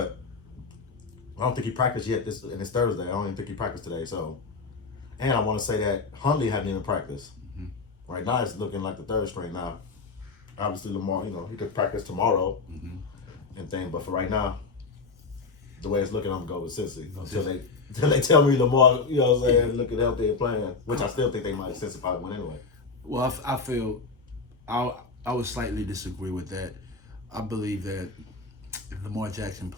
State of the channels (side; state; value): right; quieter; 4.3 dB